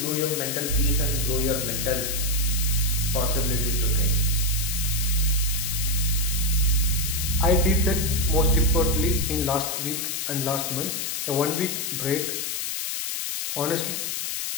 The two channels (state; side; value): noise; left; hiss, 2 dB below the sound